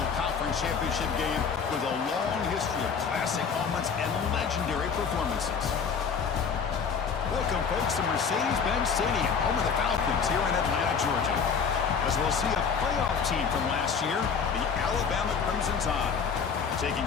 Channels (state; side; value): quieter; right; 6.1 dB